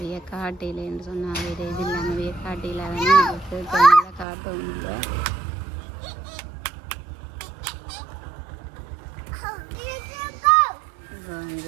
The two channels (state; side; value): drops out; left; at 4.2 s